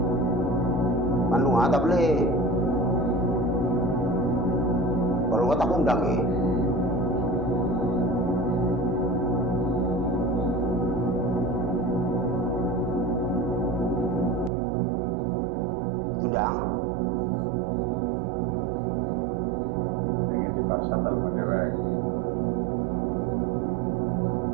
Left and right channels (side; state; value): left; drops out; at 14.5 s